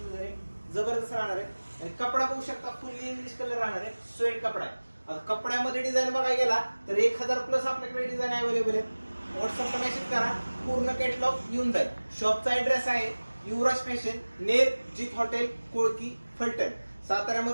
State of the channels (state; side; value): inverted; both; correlation -1.00